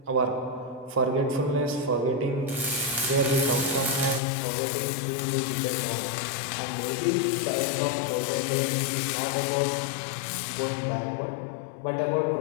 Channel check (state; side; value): drops out; right; at 4.2 s